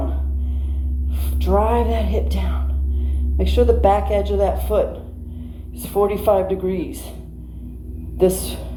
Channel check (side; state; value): both; identical; correlation 1.00